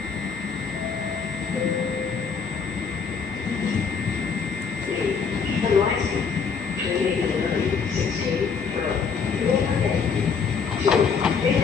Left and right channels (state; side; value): quieter; right; 5.9 dB